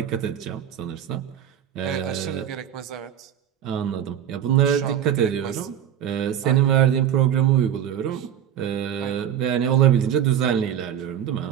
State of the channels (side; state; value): left; quieter; 9.9 dB